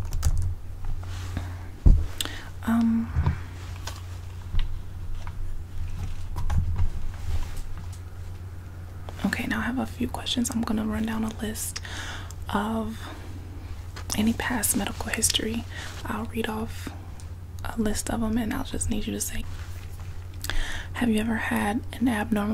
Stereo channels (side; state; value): both; identical; correlation 1.00